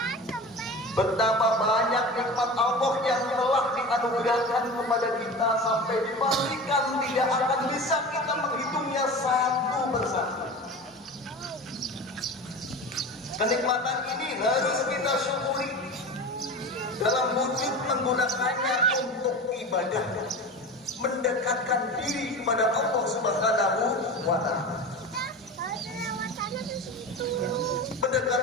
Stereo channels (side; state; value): both; normal; correlation 0.31